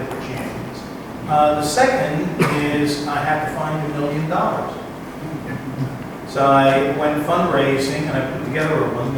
get the champions. The second is I had to find $1 million. So I went fundraising and I put together a $1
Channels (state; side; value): identical; both; correlation 1.00